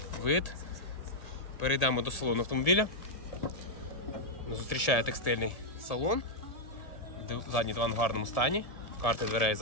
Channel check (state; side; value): late; right; 1.7 ms